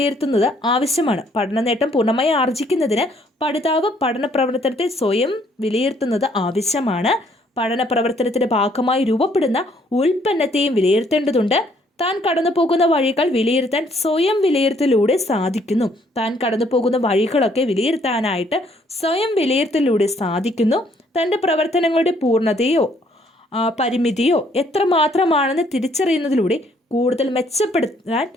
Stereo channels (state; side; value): normal; both; correlation 0.65